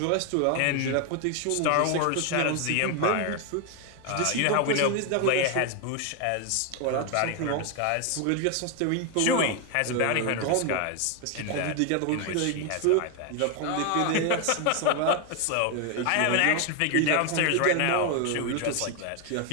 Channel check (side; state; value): both; different; correlation 0.01